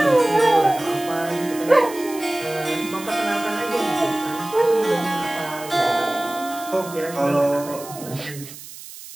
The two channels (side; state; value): right; noise; hiss, 15 dB below the sound